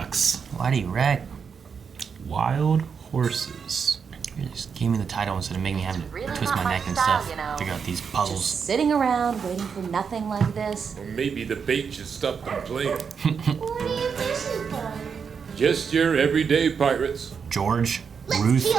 why do you wreck? Wild horses. You just gave me the title instead of making me have to Really twist not my my neck and style, stuff. you know. Figure out these puzzles. Just sitting around waiting for nothing like this. Or maybe the bait should stop them playing. What are you fishing for? Just your everyday pirates. George, Let's Ruth, feel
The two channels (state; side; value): quieter; left; 6.3 dB